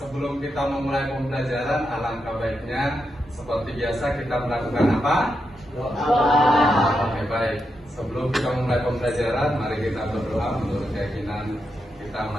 kita memulai pembelajaran, alangkah baiknya seperti biasa kita melakukan apa? Oke, baik. Sebelum kita memulai pembelajaran, mari kita berdoa menurut keyakinan kita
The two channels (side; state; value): both; normal; correlation 0.85